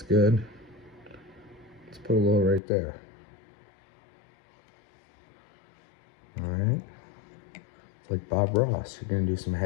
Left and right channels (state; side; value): drops out; right; at 2.6 s